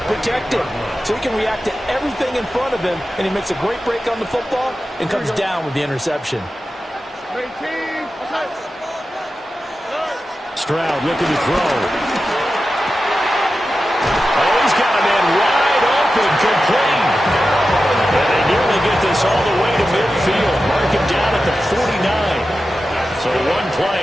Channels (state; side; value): normal; both; correlation 0.92